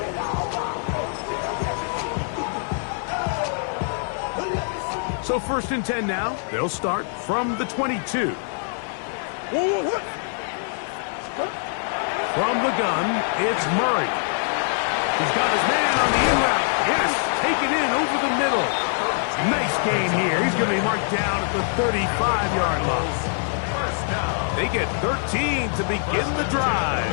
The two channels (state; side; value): silent; right; 57 dB below the other